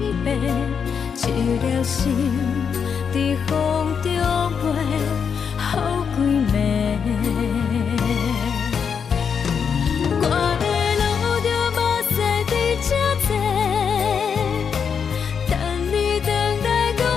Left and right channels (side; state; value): right; quieter; 6.7 dB